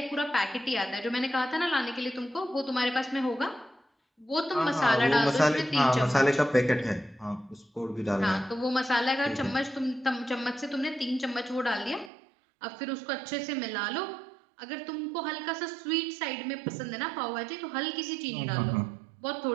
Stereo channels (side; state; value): left; drops out; at 12.1 s